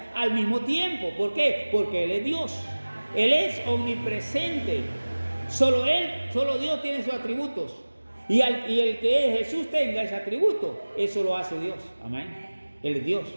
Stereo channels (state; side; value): inverted; both; correlation -1.00